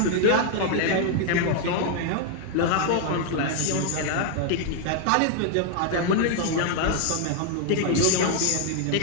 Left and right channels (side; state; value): both; different; correlation 0.00